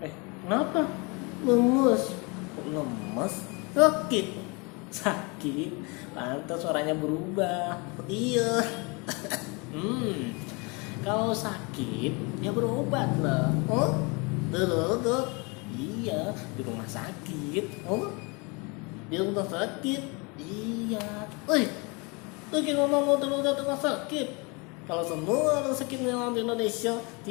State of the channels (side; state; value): right; quieter; 29.5 dB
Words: Kenapa? Lemes. Kok lemes? Sakit. Sakit? Pantas suaranya berubah. Iya. Kalau sakit, ya berobat lah. Oh? Dok. Iya, di rumah sakit. Oh? Di rumah sakit. Iya. Lagi ngomong darurat rumah sakit. Kalau semua orang sakit yang di Indonesia